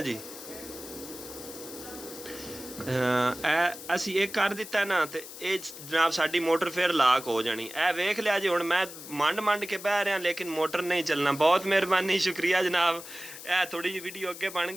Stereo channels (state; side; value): noise; left; hiss, 13 dB below the sound